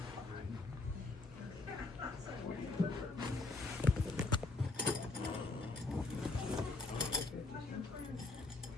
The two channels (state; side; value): quieter; right; 3.4 dB